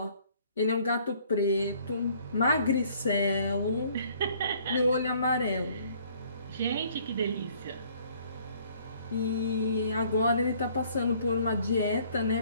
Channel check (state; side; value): inverted; both; correlation -0.60